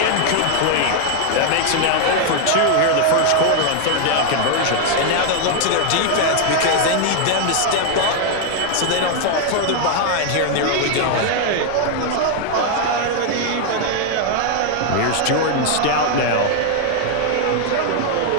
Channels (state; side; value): different; both; correlation 0.00